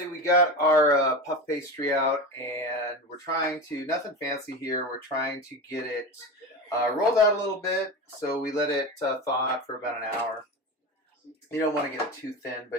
we got our puff pastry out, and we're trying to, nothing fancy here, we're trying to get it rolled out a little bit. So we let it thaw out for about an hour. You don't want to get it too thin,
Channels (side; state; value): both; normal; correlation 0.25